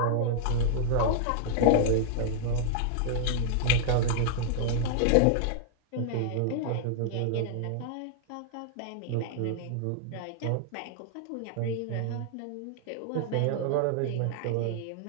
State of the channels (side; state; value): both; different; correlation -0.01